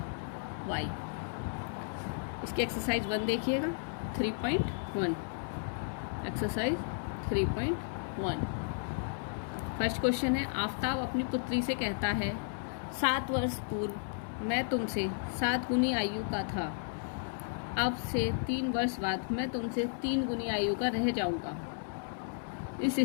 y। इसकी एक्सरसाइज 1 देखिएगा 3.1। एक्सरसाइज 3.1 फर्स्ट क्वेश्चन है, आफताब अपनी पुत्री से कहता है 7 वर्ष पूर्व मैं तुमसे 7 गुनी आयु का था, अब से 3 वर्ष बाद मैं तुमसे 3 गुनी आयु का रह जाऊंगा। इस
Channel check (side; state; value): right; silent; 55 dB below the other